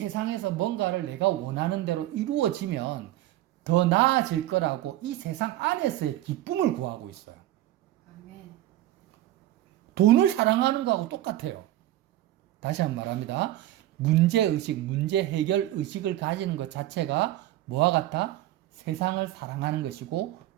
뭔가를 내가 원하는 대로 이루어지면 더 나아질 거라고 이 세상 안에서의 기쁨을 구하고 있어요. 아멘. 돈을 사랑하는 거하고 똑같아요. 다시 한번 말합니다. 문제의식, 문제 해결 의식을 가지는 것 자체가 뭐와 같아? 세상을 사랑하는 것이고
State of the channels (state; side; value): quieter; left; 14.7 dB